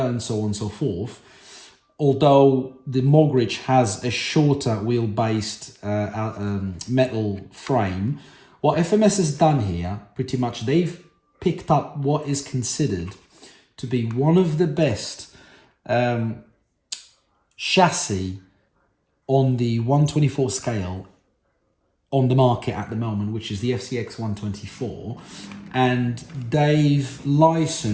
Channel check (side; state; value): both; identical; correlation 1.00